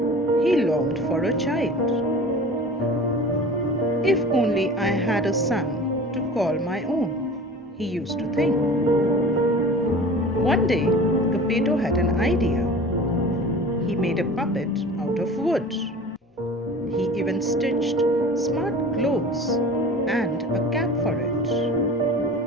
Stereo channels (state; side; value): normal; both; correlation 0.39